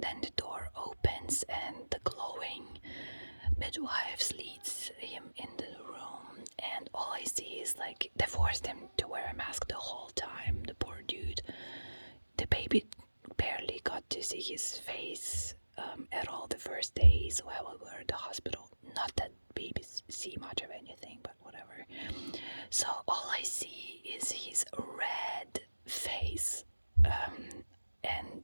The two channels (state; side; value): inverted; both; correlation -1.00